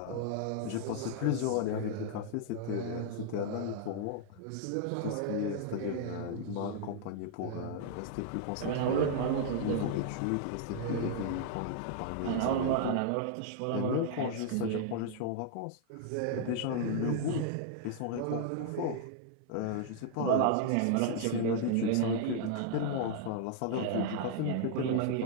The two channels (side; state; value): both; different; correlation -0.01